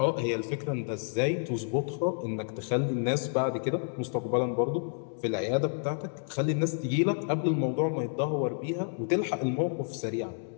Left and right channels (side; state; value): right; silent; digital silence